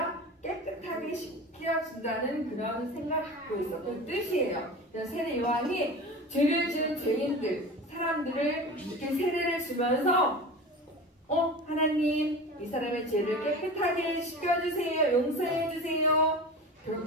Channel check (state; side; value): normal; both; correlation 0.32